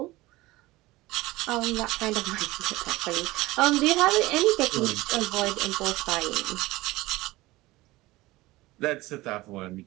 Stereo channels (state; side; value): quieter; left; 19.3 dB